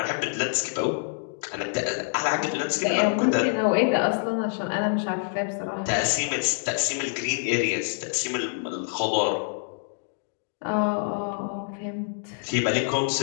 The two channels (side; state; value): right; silent; digital silence